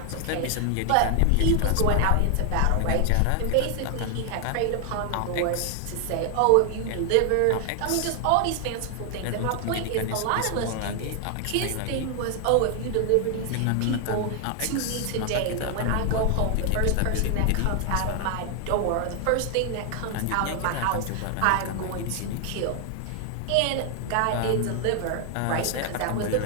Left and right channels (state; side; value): different; both; correlation 0.00